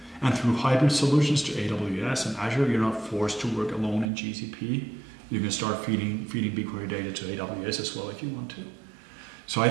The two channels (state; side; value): drops out; left; at 4.1 s